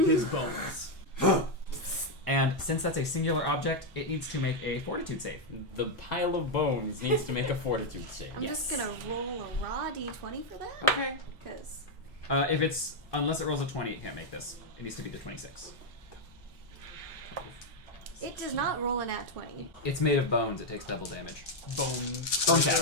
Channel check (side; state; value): both; normal; correlation 0.02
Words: his bones. And since that's a singular object, it needs to make a fortitude save. The pile of bones needs to make a fortitude save. I'm just gonna roll a raw d20 for that. Okay. Because Unless it rolls a 20, it can't make this. It needs to be the 26. it does not roll a nat 20. It's made of bones, it takes double damage. Bone